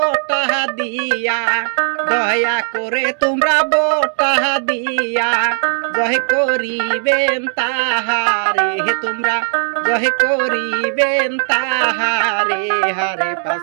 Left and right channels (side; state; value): left; silent; 60 dB below the other